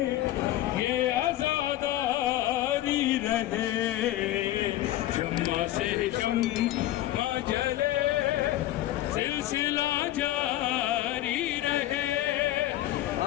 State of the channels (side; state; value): right; quieter; 14.6 dB